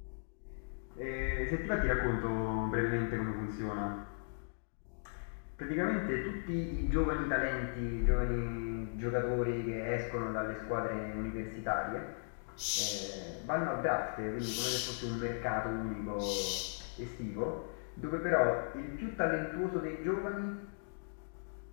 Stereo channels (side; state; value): right; silent; digital silence